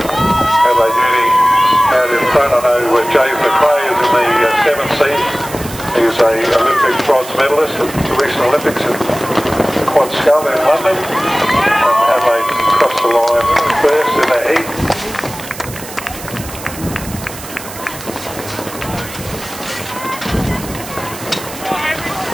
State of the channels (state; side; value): noise; right; hiss, 13 dB below the sound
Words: LA duty out in front. I know James McRae is in the 7th seat. He's a Olympic bronze medalist at the recent Olympics in Quad Scull in London. And Adelaide crossed the line first in the heat.